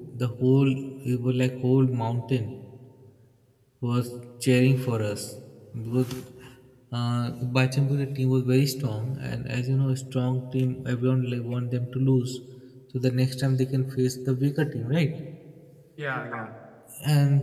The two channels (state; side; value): identical; both; correlation 1.00